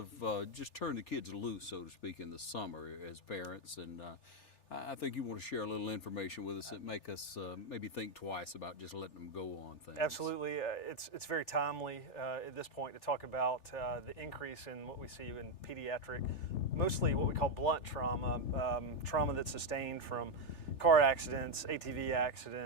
just turn the kids loose, so to speak, in the summer as parents. And I think you want to share a little information with us that make us maybe think twice about just letting them go on things. Absolutely. It's very timely at this point to talk about the increase in what we see in pediatric, mostly what we call blunt trauma, trauma that's sustained from car accidents, ATV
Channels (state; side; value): late; right; 3.4 ms